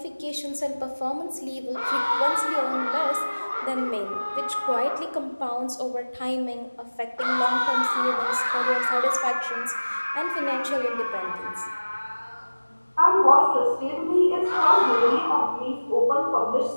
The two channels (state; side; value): inverted; both; correlation -1.00